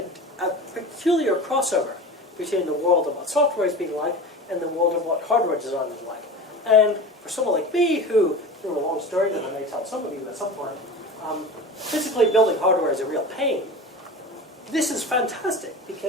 a peculiar crossover between the world of what software is being like and the world of what hardware design is like. And for someone like me, who, through a long story that I may tell some of you at some point, physically building hardware is a real pain. This is fantastic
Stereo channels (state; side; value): normal; both; correlation 0.32